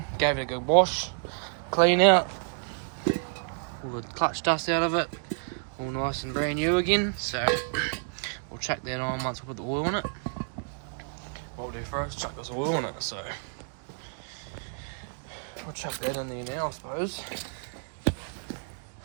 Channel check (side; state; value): left; silent; digital silence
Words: gave it a good wash, clean out, all the clutch dust out of it, all nice and brand new again. So we'll chuck that on once we put the oil in it. What we'll do first, chuck this oil in it. So we'll chuck that in there now, I suppose.